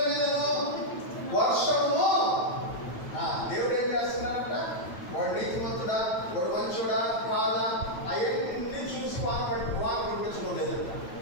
మీదను వర్షము. దేవుడు ఏం చేస్తున్నాడంట? వాడు నీతిమంతుడా, వాడు మంచుడా కాదా, అవన్నీ చూసి వాన పంపించడం లేదంట.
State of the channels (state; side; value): late; right; 9.2 ms